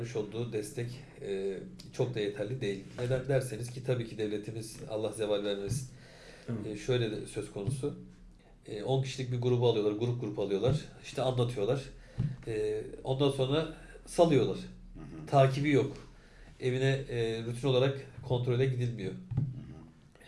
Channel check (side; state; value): both; identical; correlation 1.00